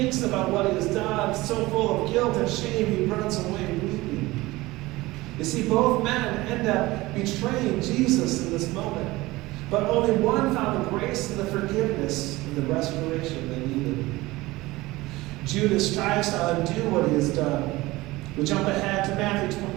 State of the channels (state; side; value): quieter; left; 19.8 dB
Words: about what he has done, so full of guilt and shame, he runs away weeping. You see, both men end up betraying Jesus in this moment. But only one found the grace and the forgiveness and the restoration they needed. Judas tries to undo what he has done. We jump ahead to Matthew